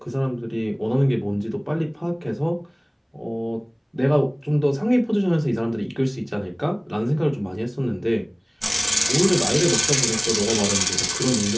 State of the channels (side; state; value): both; identical; correlation 1.00